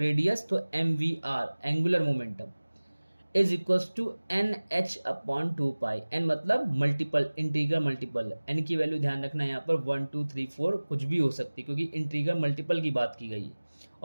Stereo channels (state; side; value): inverted; both; correlation -1.00